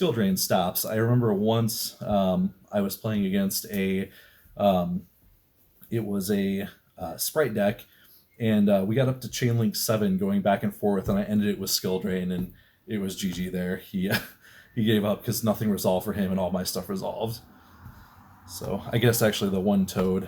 drain stops. I remember once I was playing against it was a Sprite deck, and we got up to chain link 7 going back and forth, and I ended it with skill drain, and it was GG there. He gave up because nothing resolved for him and all my stuff resolved. So I guess actually the one toad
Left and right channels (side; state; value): both; identical; correlation 1.00